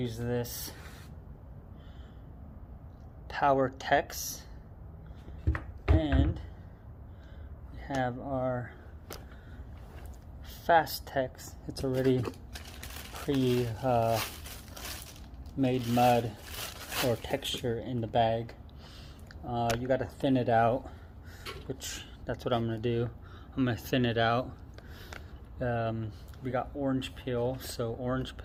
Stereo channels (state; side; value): identical; both; correlation 1.00